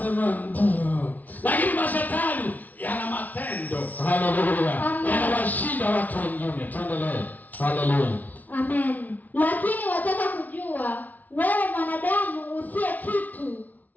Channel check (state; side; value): late; right; 0.078 ms